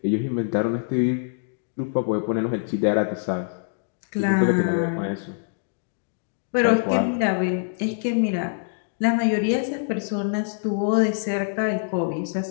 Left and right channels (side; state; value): right; silent; digital silence